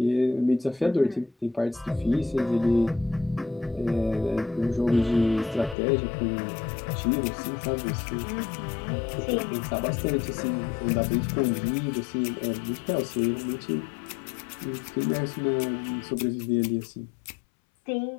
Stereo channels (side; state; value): right; drops out; at 5.8 s